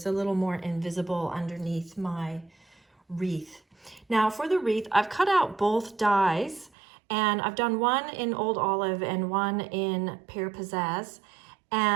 a little more invisible underneath my wreath. Now for the wreath, I've cut out both dies, and I've done one in Old Olive and one in Pear Pizzazz,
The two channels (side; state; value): left; drops out; at 6.7 s